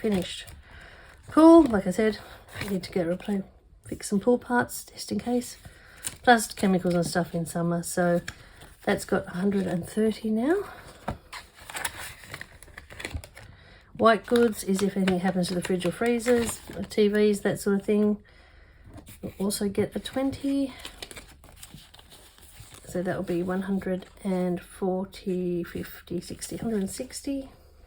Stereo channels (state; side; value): identical; both; correlation 1.00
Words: Pool, like I said, I need to get fix some pool parts just in case. Plus chemicals and stuff in summer. So that's got 130 now. White goods is if anything happens to the fridge or freezers, TVs, that sort of thing. We'll also get a 20. So that will be 140, 50, 60, 160.